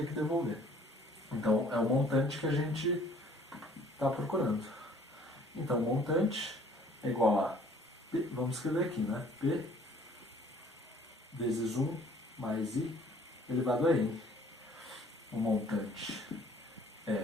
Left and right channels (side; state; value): both; normal; correlation 0.56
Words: que devolver. Então, é o montante que a gente está procurando. Então, o montante é igual a P, vamos escrever aqui, né? P vezes 1 mais I elevado a N. O montante